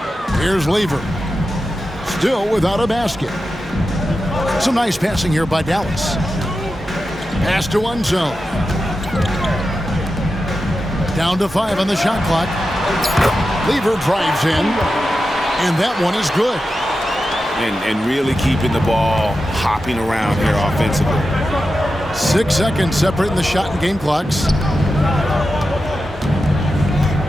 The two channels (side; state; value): both; normal; correlation 0.91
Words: Here's Lever. Still without a basket. Some nice passing here by Dallas. Pass to one zone. Down to 5 on the shot clock. Lever drives in. And that one is good. And really keeping the ball hopping around here offensively. 6 seconds separating the shot and game clocks.